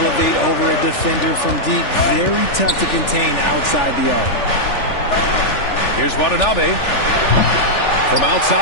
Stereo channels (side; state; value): right; late; 3.4 ms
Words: over a defender from deep, very tough to contain outside the arc. Here's Watanabe. From